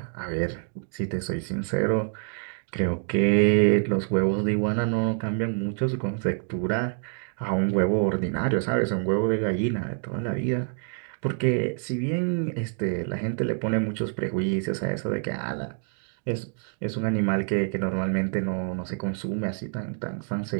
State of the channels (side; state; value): left; silent; 57 dB below the other